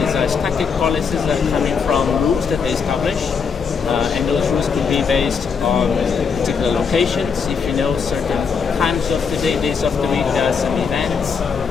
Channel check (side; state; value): right; quieter; 5.9 dB